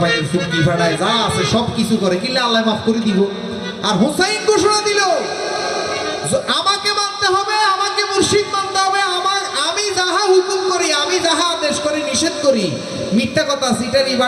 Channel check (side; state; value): both; identical; correlation 1.00